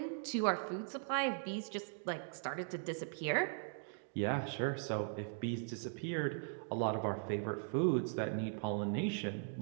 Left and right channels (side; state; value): left; silent; digital silence